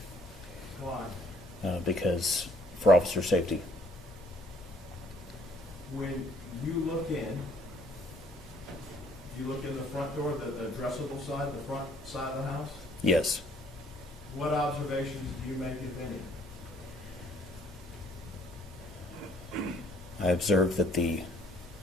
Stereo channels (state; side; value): normal; both; correlation 0.61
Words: Why? Because for officer safety. When you look in, do you look in the front door, the addressable side, the front side of the house? Yes. What observations do you make, if any? I observed that the